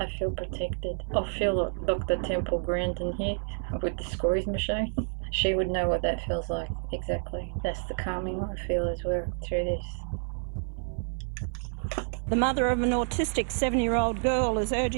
feel protected. I feel like Dr. Temple Grandin here with the squeeze machine. She would know what that feels like exactly. That's the calming I feel as well through this. The mother of an autistic 7-year-old girl is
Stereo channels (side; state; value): left; silent; 55 dB below the other